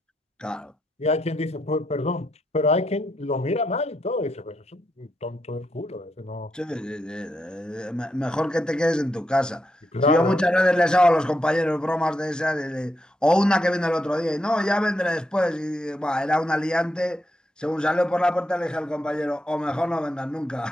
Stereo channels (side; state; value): both; normal; correlation 0.81